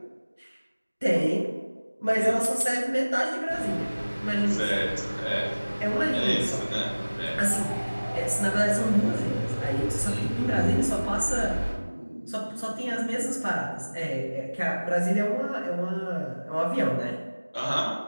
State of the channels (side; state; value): both; inverted; correlation -1.00